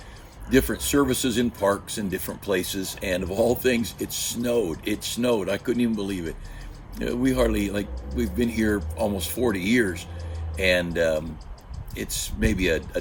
different services in parks and different places. And of all things, it snowed. It snowed. I couldn't even believe it. We hardly, we've been here almost 40 years, and it's maybe a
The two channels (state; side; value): identical; both; correlation 1.00